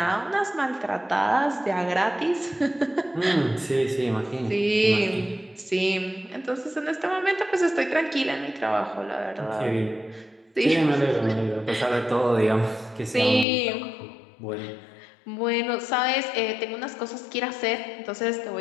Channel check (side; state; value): right; drops out; at 13.5 s